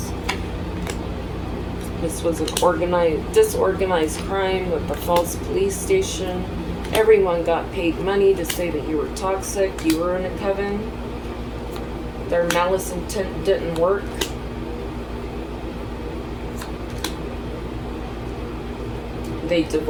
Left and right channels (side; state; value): both; identical; correlation 1.00